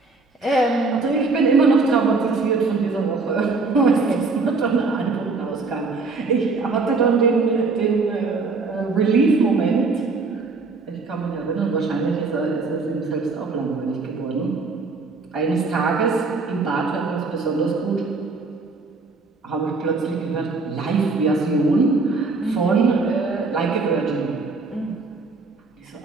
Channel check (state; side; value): quieter; left; 4.0 dB